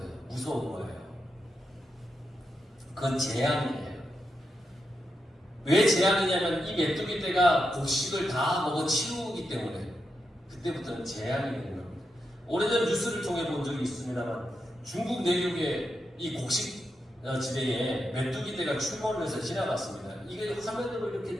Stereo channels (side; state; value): both; normal; correlation 0.86